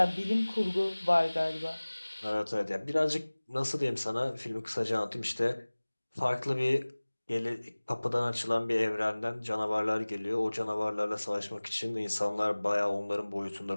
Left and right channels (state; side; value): inverted; both; correlation -1.00